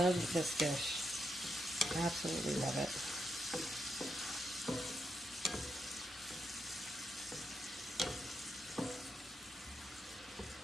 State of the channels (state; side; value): normal; both; correlation 0.83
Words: this dish. Absolutely love it.